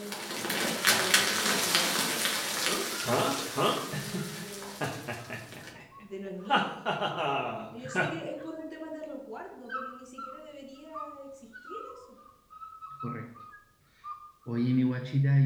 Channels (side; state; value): both; identical; correlation 1.00